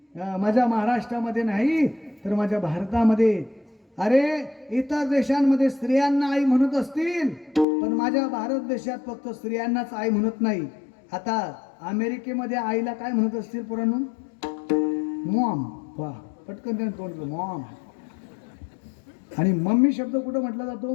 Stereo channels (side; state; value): right; drops out; at 7.7 s